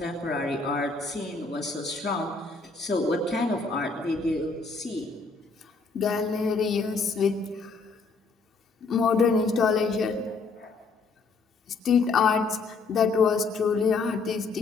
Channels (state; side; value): quieter; right; 4.2 dB